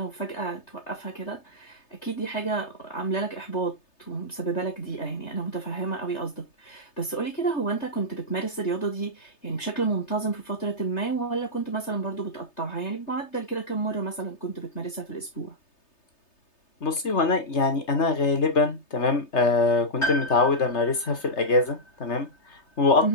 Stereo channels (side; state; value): right; late; 3.3 ms